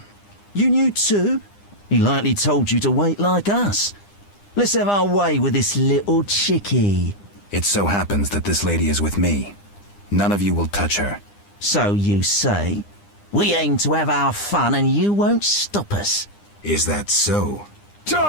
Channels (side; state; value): right; late; 9.9 ms